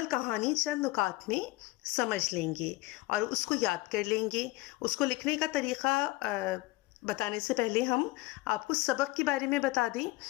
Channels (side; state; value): right; quieter; 19.9 dB